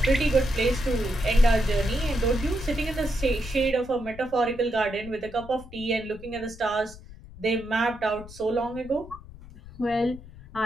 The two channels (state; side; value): noise; left; rumble, 18 dB below the sound